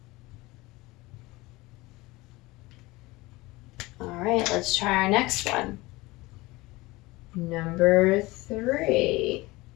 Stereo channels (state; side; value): quieter; right; 21.2 dB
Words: All right, let's try our next one. Number 3.